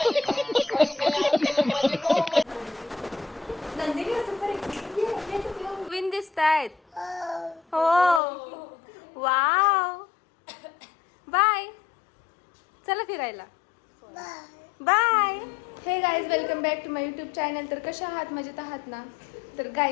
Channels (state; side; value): drops out; right; at 8.2 s